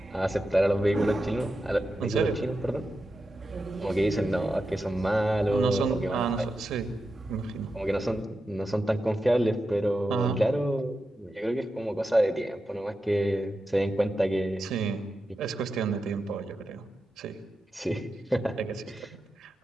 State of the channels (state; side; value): normal; both; correlation 0.89